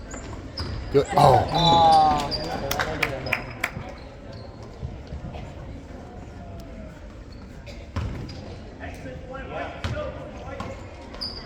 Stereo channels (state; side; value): identical; both; correlation 1.00